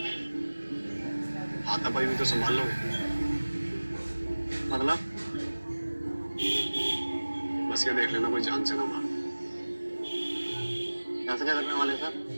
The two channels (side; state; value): both; inverted; correlation -1.00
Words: हाथापाई भी तो संभाल लो। मतलब बस ये देख लेना कोई जान से ना मार। ऐसे क्या करने वाले सर?